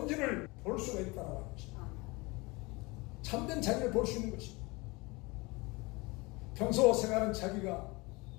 볼 수가 있다고 하는 것입니다. 참된 자기를 볼 수 있는 것입니다. 평소 생활하는 자기가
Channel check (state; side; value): quieter; right; 24.9 dB